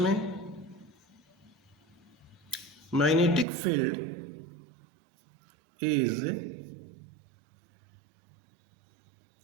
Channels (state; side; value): drops out; left; at 3.5 s